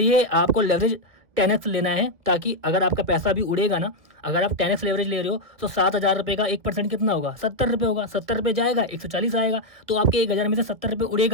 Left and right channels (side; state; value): left; late; 1.9 ms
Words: आपको लेवरेज 10x लेना है, ताकि अगर आपका पैसा भी उड़ेगा ना, अगर आप 10x लेवरेज ले रहे हो तो 7000 रुपये का 1% कितना होगा, 70 रुपये होगा। 70 रुपये जाएगा, 140 आएगा, तो आपके 1000 में से 70 रुपये